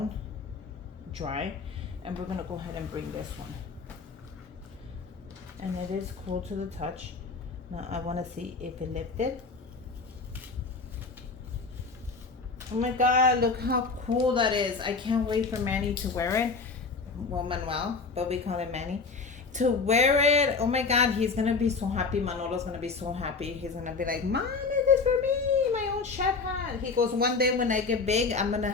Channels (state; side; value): quieter; right; 4.5 dB